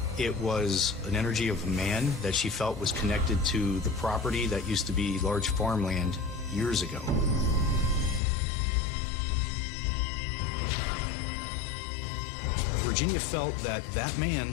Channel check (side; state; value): right; drops out; at 8.2 s